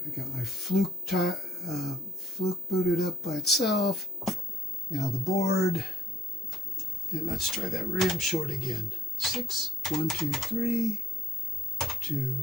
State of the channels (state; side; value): normal; both; correlation 0.69